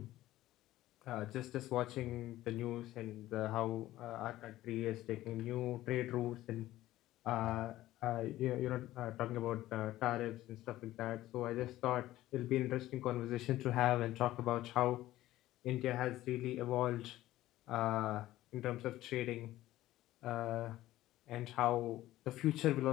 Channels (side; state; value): right; quieter; 15.4 dB